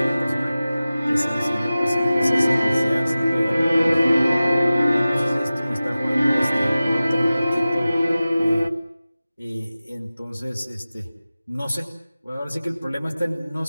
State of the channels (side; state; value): both; inverted; correlation -0.96